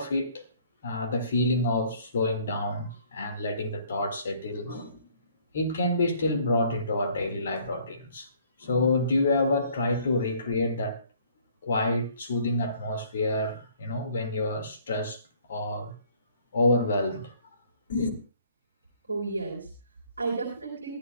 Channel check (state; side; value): inverted; both; correlation -0.60